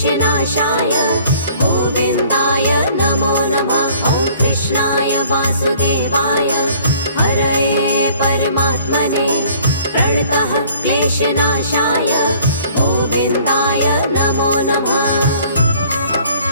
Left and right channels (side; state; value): both; inverted; correlation -0.55